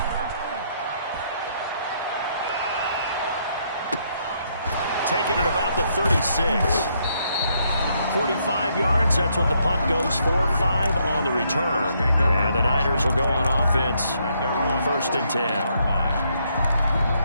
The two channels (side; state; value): both; inverted; correlation -0.73